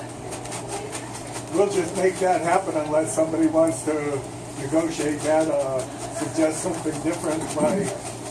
we'll just make that happen unless somebody wants to negotiate that or suggest something different.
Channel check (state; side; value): identical; both; correlation 1.00